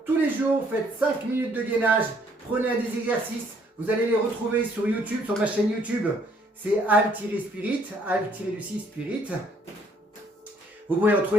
tous les jours, faites 5 minutes de gainage. Prenez un des exercices. Vous allez les retrouver sur YouTube, sur ma chaîne YouTube. C'est Al-Spirit, Al-Spirit. Vous pouvez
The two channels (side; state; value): both; normal; correlation 0.65